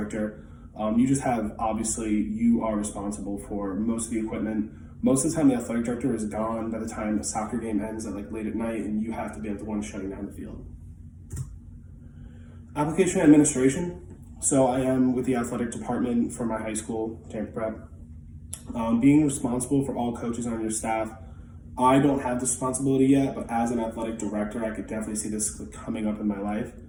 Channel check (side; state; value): both; identical; correlation 1.00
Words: You just have, obviously, you are responsible for most of the equipment. Most of the time, the athletic director is gone by the time the soccer game ends at like late at night, and you have to be the one shutting down the field. Application and administration. So I am with the athletic department for my high school, Tampa Prep. Being responsible for all coaches on your staff. I don't have this responsibility yet, but as an athletic director, I could definitely see this coming up in my life.